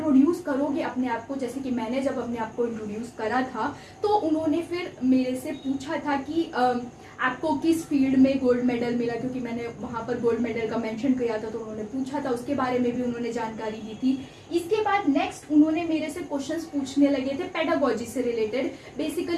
करोगे अपने आप को, जैसे कि मैंने जब अपने आप को इंट्रोड्यूस करा था, तो उन्होंने फिर मेरे से पूछा था कि आपको किस फील्ड में गोल्ड मेडल मिला, क्योंकि मैंने वहां पर गोल्ड मेडल का मेंशन किया था, तो उन्होंने पूछा था, उसके बारे में भी उन्होंने जानकारी दी थी। इसके बाद नेक्स्ट उन्होंने मेरे से क्वेश्चंस पूछने लगे थे पेडागोजी से रिलेटेड।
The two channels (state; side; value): identical; both; correlation 1.00